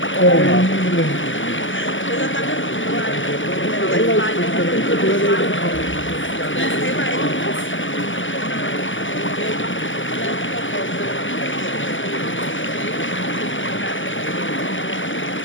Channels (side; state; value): right; late; 0.56 ms